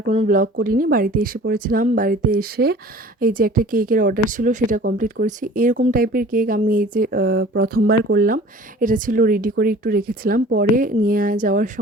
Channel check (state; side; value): normal; both; correlation 0.46